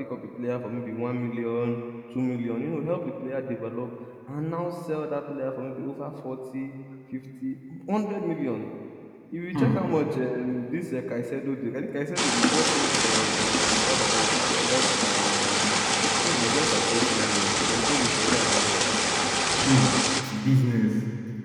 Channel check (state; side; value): identical; both; correlation 1.00